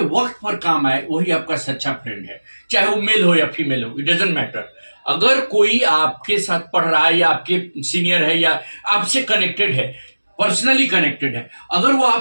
वक्त पर काम आए वही आपका सच्चा friend है, चाहे वो मेल हो या फीमेल हो, इट डजंट मैटर. अगर कोई आपके साथ पढ़ रहा है या आपके सीनियर है या आपसे कनेक्टेड है, पर्सनली कनेक्टेड है, अगर वो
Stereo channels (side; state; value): both; inverted; correlation -1.00